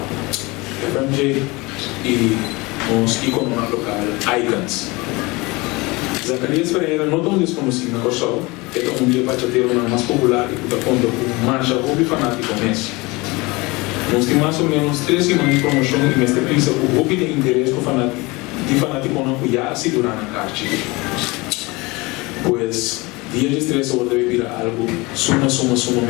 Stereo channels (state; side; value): quieter; right; 24.0 dB